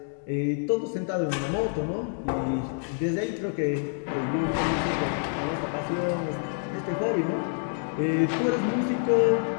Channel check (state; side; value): silent; right; 60 dB below the other